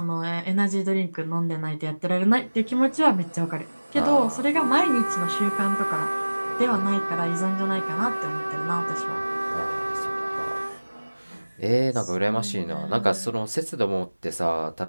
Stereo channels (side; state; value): both; inverted; correlation -1.00